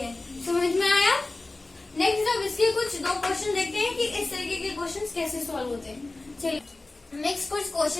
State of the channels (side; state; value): right; quieter; 3.1 dB